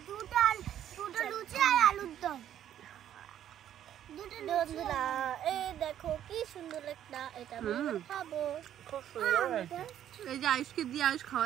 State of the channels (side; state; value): left; quieter; 10.8 dB